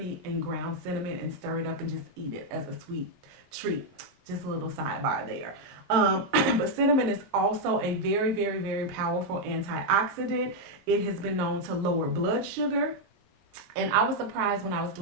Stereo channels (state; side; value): late; left; 22 ms